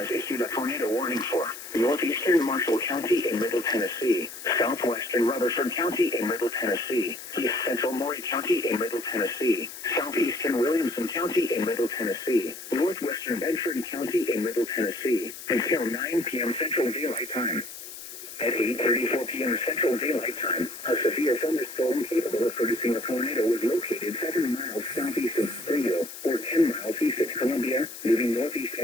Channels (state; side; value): noise; left; hiss, 12 dB below the sound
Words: issued a tornado warning for northeastern Marshall County in Middle Tennessee, southwestern Rutherford County in Middle Tennessee, east central Maury County in Middle Tennessee, southeastern Williamson County in Middle Tennessee, northwestern Bedford County in Middle Tennessee, until 9 p.m. Central Daylight Time. At 8:34 p.m. Central Daylight Time, a severe thunderstorm capable of producing a tornado was located 7 miles southeast of Springhill, or 10 miles east of Columbia, moving northeast